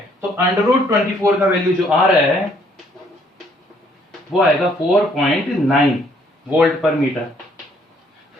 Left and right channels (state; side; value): normal; both; correlation 0.65